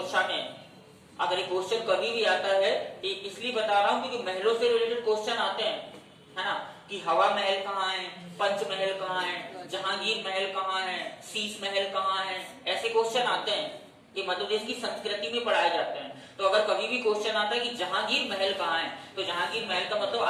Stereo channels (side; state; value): both; identical; correlation 1.00